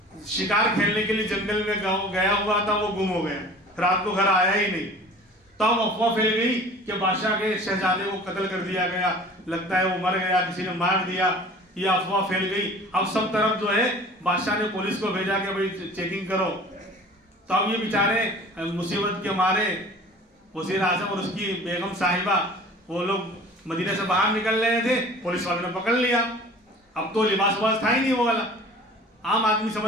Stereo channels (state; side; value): normal; both; correlation 0.45